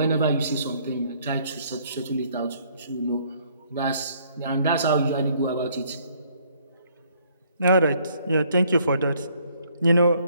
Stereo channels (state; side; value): inverted; both; correlation -0.64